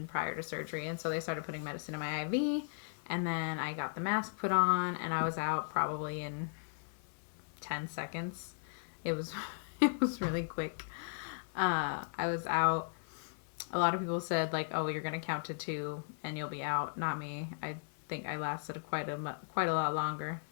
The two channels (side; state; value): right; silent; digital silence